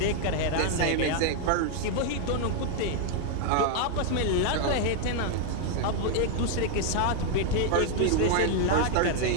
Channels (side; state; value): both; different; correlation 0.00